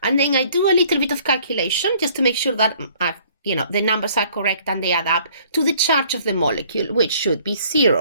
And then I do a little bit of calculation just to make sure that the numbers are correct and they add up to the charge of the molecule, which should be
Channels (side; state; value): both; inverted; correlation -0.58